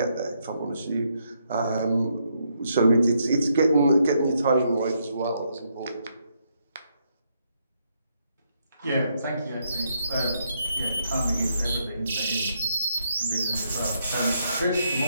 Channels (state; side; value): inverted; both; correlation -0.76